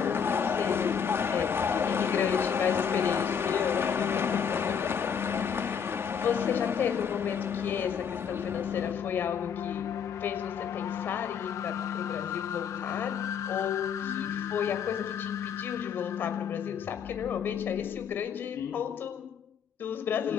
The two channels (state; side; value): quieter; right; 7.4 dB